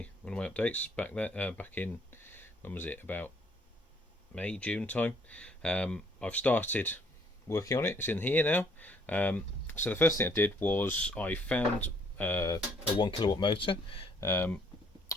of my updates back there, back in, when was it, about May, June time. I've started working on it. It's in here now. So the first thing I did was I found a 1 kilowatt motor.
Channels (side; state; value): both; normal; correlation 0.64